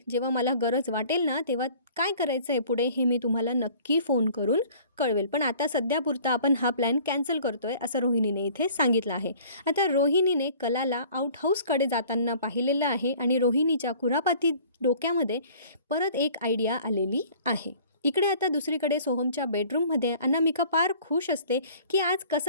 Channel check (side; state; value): both; inverted; correlation -0.50